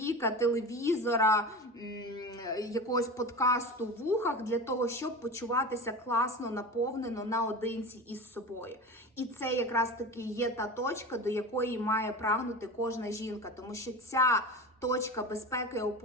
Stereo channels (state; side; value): normal; both; correlation 0.30